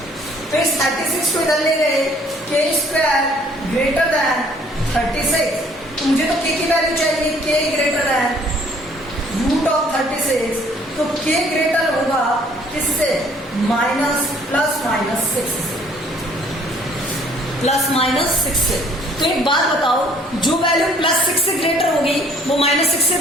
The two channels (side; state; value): both; normal; correlation 0.59